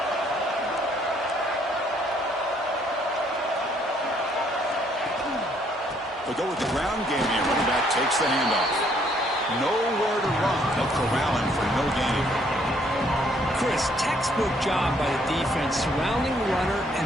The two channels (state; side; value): normal; both; correlation 0.66